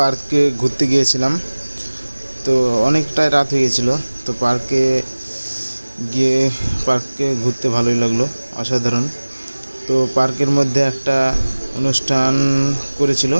ঘুরতে গিয়েছিলাম। তো অনেকটাই রাত হয়ে গেছিলো। তো পার্কে ঘুরতে ভালোই লাগলো, অসাধারণ। তো পার্কের মধ্যে একটা অনুষ্ঠান করেছিল।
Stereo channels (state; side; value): inverted; both; correlation -1.00